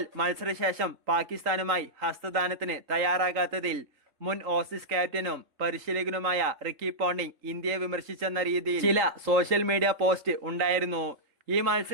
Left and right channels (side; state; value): left; late; 3.8 ms